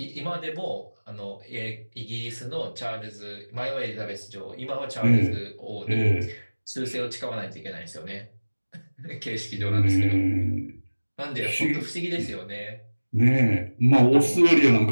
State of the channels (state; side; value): inverted; both; correlation -1.00